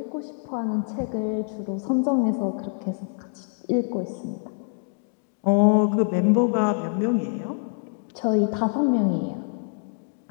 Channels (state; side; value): silent; right; 61 dB below the other